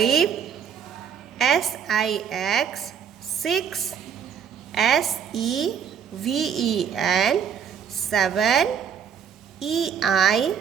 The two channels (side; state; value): left; quieter; 7.7 dB